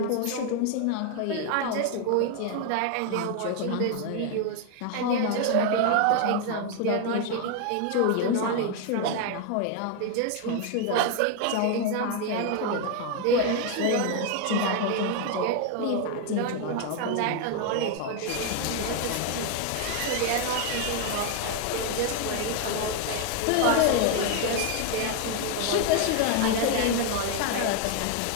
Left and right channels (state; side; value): different; both; correlation 0.01